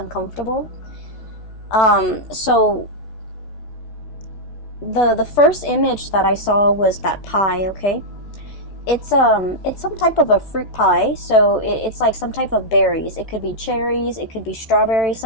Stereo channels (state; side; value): late; right; 14 ms